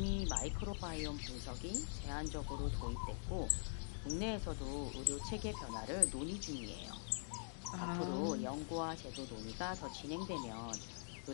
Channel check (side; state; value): right; silent; digital silence